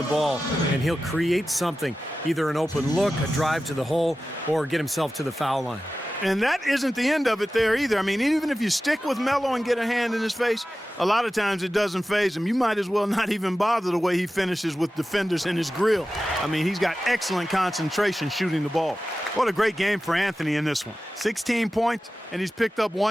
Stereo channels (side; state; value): both; normal; correlation 0.94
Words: ball, and he'll create something, either an open look, a drive to the hole, or get himself to the foul line. And that isn't the end of it there either. I mean, even if you stick with Melo and get a hand in his face, a lot of times it doesn't faze him. You might as well not even bother the way he finishes with defenders in his grill. I mean, he's got excellent concentration shooting the ball. What a great game for Anthony in this one. 16 points, and he's picked up